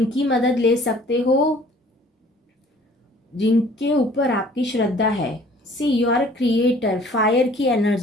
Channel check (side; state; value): both; normal; correlation 0.53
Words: मदद ले सकते हो जिनके ऊपर आपकी श्रद्धा है। See, you are a creator, fire की